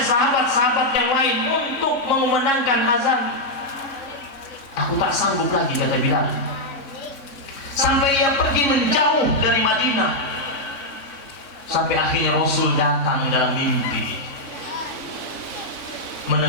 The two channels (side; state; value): right; late; 3.6 ms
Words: yang lain untuk mengumandangkan azan. Aku tak sanggup lagi, kata Bilal. Sampai ia pergi menjauh dari Madinah. Sampai akhirnya Rasul datang dalam mimpi,